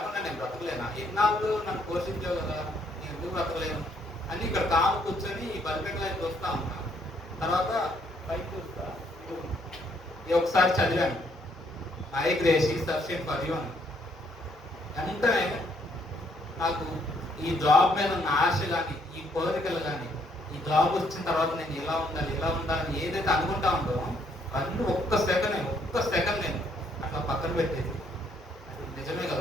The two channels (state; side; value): normal; both; correlation 0.69